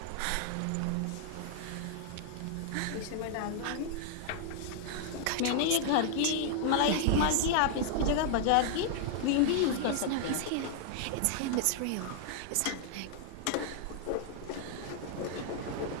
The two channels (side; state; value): both; different; correlation 0.00